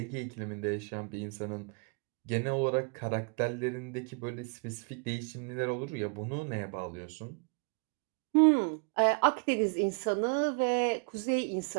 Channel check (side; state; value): left; quieter; 36.1 dB